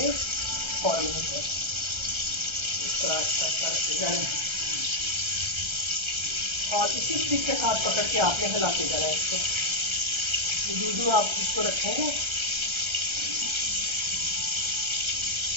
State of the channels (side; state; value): left; late; 1.3 ms